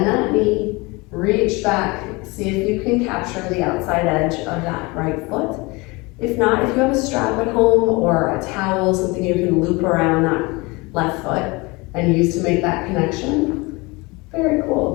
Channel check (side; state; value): right; quieter; 25.2 dB